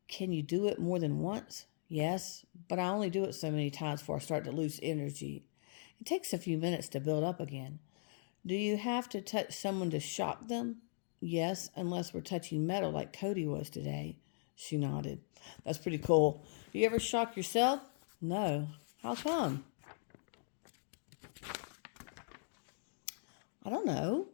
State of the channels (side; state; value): right; silent; digital silence